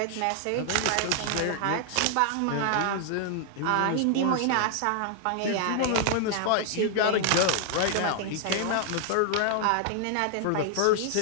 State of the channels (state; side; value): different; both; correlation 0.00